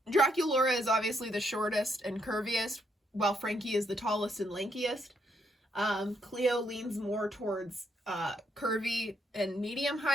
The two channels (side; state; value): both; normal; correlation 0.75